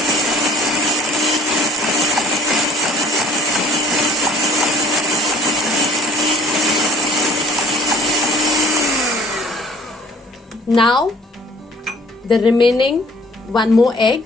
Now the remaining 1 more egg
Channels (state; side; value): normal; both; correlation 0.53